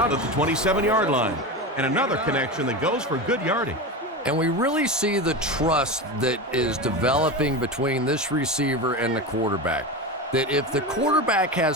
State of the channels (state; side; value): normal; both; correlation 0.22